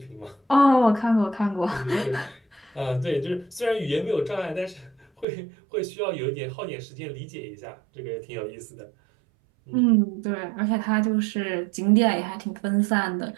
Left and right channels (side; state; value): left; drops out; at 5.2 s